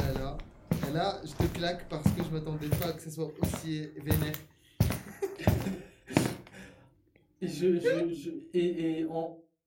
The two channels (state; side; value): identical; both; correlation 1.00